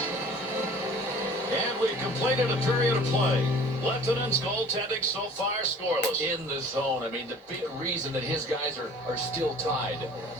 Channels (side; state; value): both; normal; correlation 0.48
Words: And we've completed a period of play. Lieutenant's goaltending so far scoreless. In the zone. I mean, the big reason that his guys are still tied.